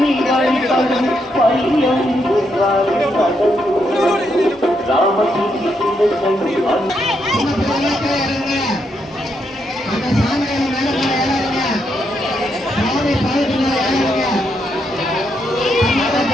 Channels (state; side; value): normal; both; correlation 0.79